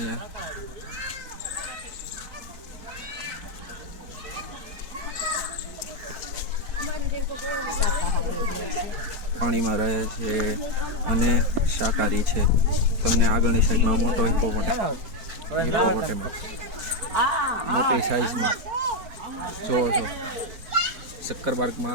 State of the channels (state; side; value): late; left; 4.2 ms